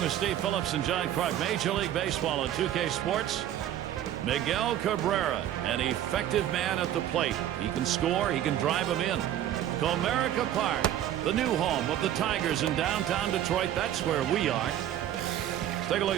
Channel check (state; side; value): quieter; left; 11.6 dB